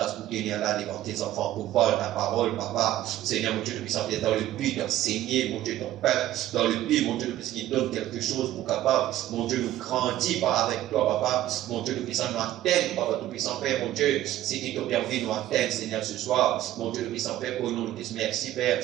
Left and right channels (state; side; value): quieter; left; 13.7 dB